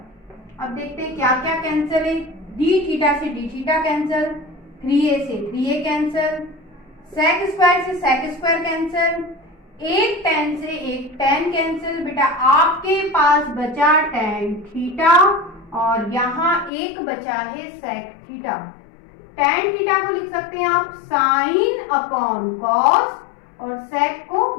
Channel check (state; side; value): drops out; right; at 16.7 s